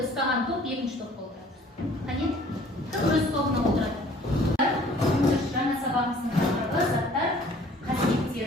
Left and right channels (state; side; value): normal; both; correlation 0.54